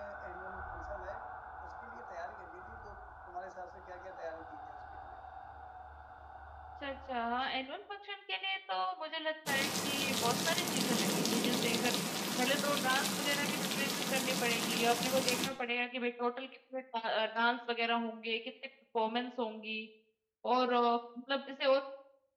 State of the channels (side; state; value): both; identical; correlation 1.00